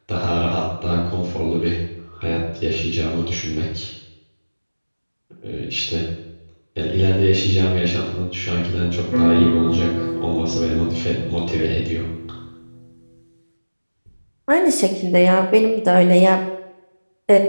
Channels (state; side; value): inverted; both; correlation -1.00